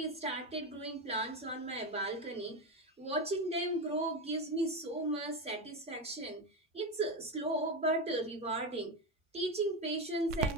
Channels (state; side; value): normal; both; correlation 0.14